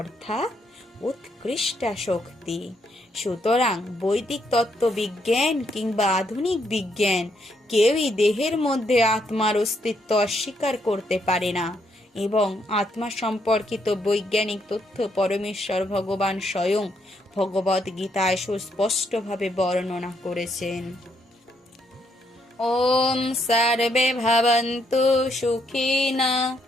উৎকৃষ্ট শক্তি। সুতরাং বৈদিক তত্ত্ববিজ্ঞান কিংবা আধুনিক বিজ্ঞান কেউই দেহের মধ্যে আত্মার অস্তিত্ব অস্বীকার করতে পারে না এবং আত্মা সম্পর্কিত বৈজ্ঞানিক তথ্য পরমেশ্বর ভগবান স্বয়ং ভগবদ গীতায় সুস্পষ্টভাবে বর্ণনা করেছেন। ওম সর্বে ভবন্তু সুখিনা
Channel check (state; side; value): normal; both; correlation 0.75